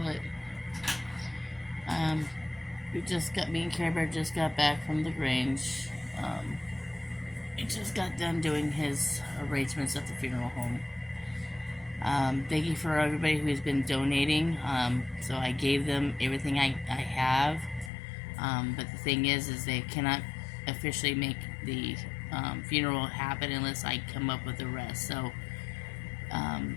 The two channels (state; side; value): drops out; right; at 17.9 s